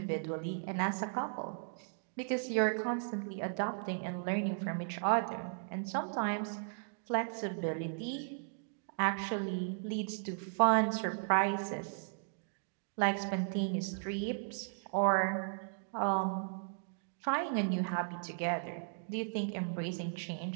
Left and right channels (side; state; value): left; silent; digital silence